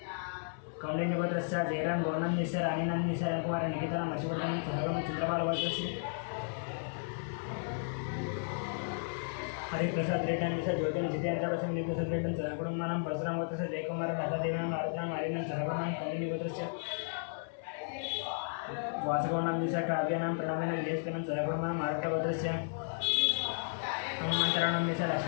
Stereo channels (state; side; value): silent; right; 55 dB below the other